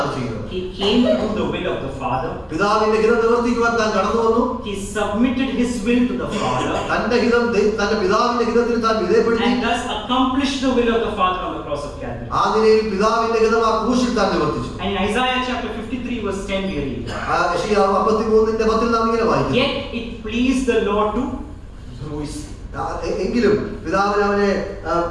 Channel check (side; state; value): both; identical; correlation 1.00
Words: ചെയ്യുന്നത്. He came to do the will of the Father. പിതാവിന്റെ ഹിതം നിവർത്തിക്കുവാൻ താൻ കടന്നു വന്നു. He submitted his will to the Father. തന്റെ പിതാവിന്റെ ഹിതത്തിൽ താൻ വിധേയപ്പെടുത്തി. And thus accomplished the will of the Father on the cross of Calvary. ആ നിലയിൽ പിതാവിന്റെ ഹിതം ആ ക്രൂശിൽ താൻ നിവർത്തിച്ചു. And in Isaiah chapter 53 verse 10 we read, യെശയ്യാവ് 53:10 നാം ഇങ്ങനെ വായിക്കുന്നു, yet it pleased the Lord to bruise. എങ്കിലും പിതാവിന് അവനെ